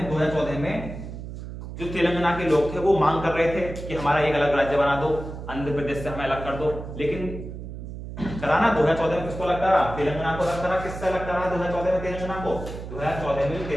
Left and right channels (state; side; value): noise; right; hum, 9 dB below the sound